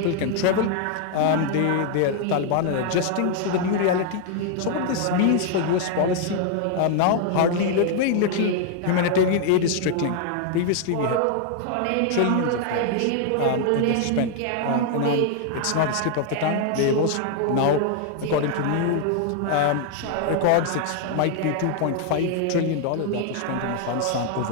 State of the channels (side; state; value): both; different; correlation 0.00